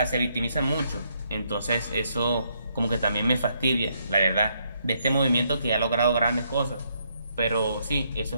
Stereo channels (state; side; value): inverted; both; correlation -0.73